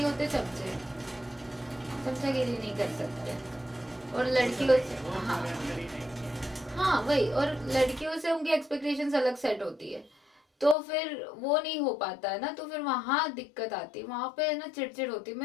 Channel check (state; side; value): drops out; right; at 10.8 s